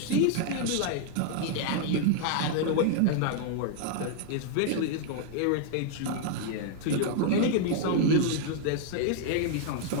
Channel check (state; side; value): different; both; correlation 0.00